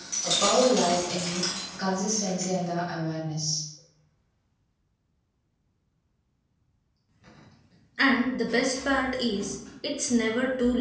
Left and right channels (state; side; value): identical; both; correlation 1.00